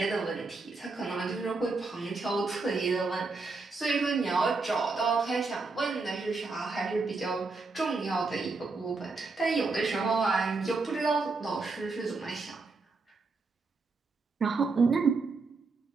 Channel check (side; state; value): left; quieter; 4.0 dB